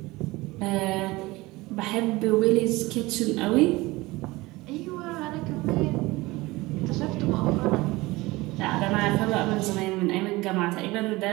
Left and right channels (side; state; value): left; quieter; 20.9 dB